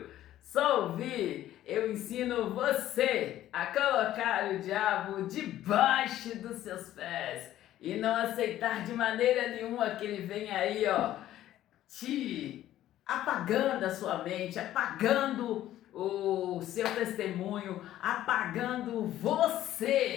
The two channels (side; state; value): right; quieter; 13.2 dB